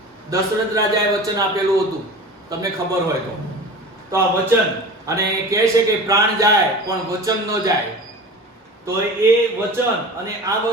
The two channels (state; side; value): normal; both; correlation 0.35